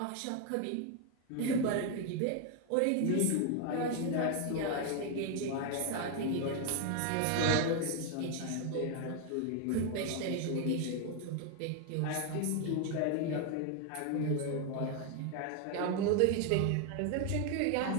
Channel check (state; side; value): different; both; correlation 0.01